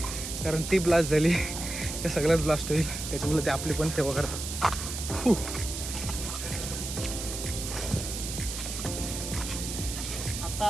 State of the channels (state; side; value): noise; right; hiss, 6 dB below the sound